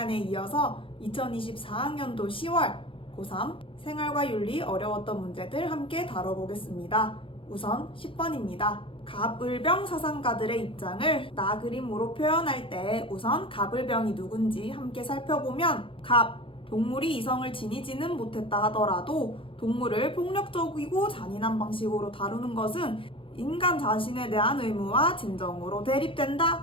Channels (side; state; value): right; late; 0.25 ms